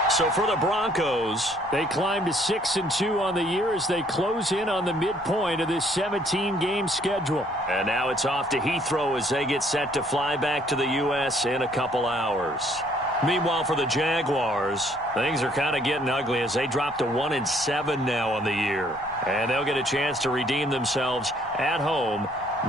So for the Broncos, they climb to 6-2 on the year as they close in on the midpoint of this 17-game schedule. And now it's off to Heathrow as they get set to fly back to the U.S. in a couple hours. Meanwhile, for the Jaguars, things are kind of getting ugly as they drop to 1-7 now on the year. And they'll get a chance to redeem themselves at home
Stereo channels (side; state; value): left; noise; rumble, 24 dB below the sound